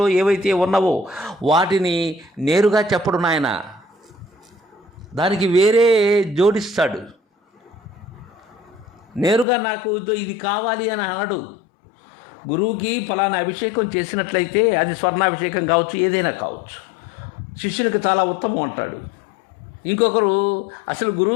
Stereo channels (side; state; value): right; drops out; at 9.5 s